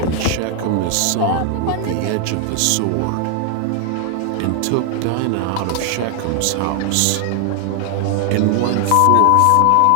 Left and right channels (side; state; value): both; different; correlation 0.00